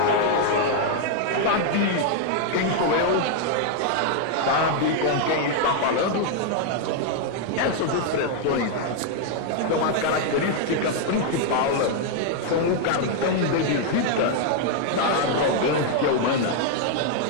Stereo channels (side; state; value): both; different; correlation 0.00